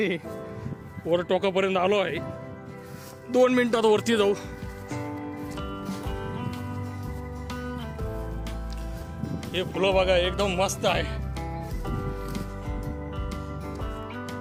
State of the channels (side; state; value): both; identical; correlation 1.00